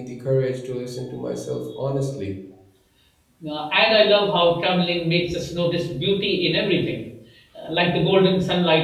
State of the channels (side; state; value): both; identical; correlation 1.00